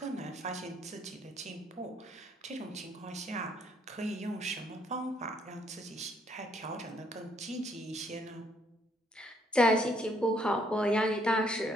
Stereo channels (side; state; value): both; normal; correlation 0.68